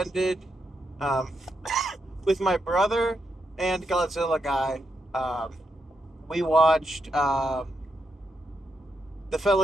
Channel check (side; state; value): both; normal; correlation 0.83